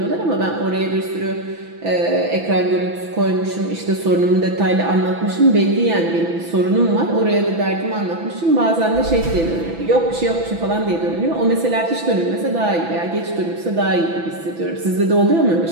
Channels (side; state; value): left; late; 6.0 ms